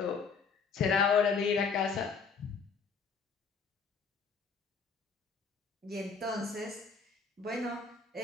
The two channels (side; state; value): right; quieter; 5.3 dB